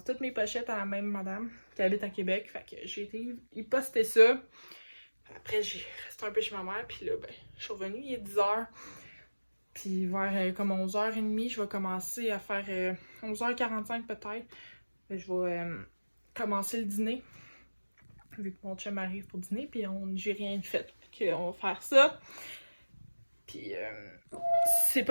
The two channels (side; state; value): both; inverted; correlation -1.00